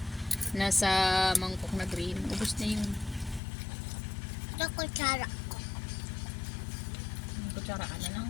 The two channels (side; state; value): right; drops out; at 3.4 s